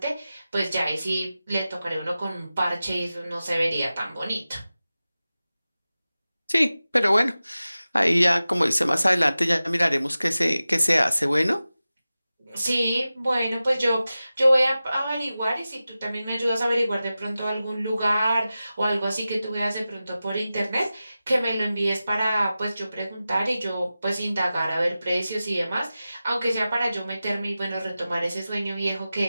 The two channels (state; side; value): inverted; both; correlation -0.95